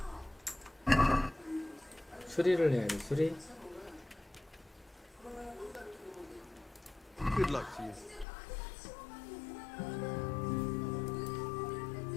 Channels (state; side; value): drops out; right; at 8.2 s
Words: 수리를 해야 돼. 수리. Good luck to you.